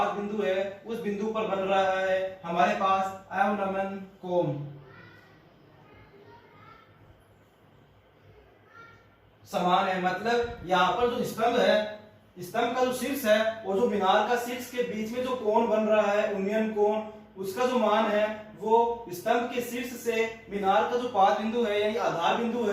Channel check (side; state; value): both; identical; correlation 1.00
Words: बिंदु है उस बिंदु पर बन रहा है हमारे पास अवनमन कोण। समान है, मतलब यहाँ पर जो स्तंभ है, स्तंभ का जो शीर्ष है और जो मीनार का शीर्ष के बीच में जो कोण बन रहा है उन्नयन कोण, उसका जो मान है वो स्तंभ के शीर्ष से मीनार का जो पाद बिंदु है यानी आधार बिंदु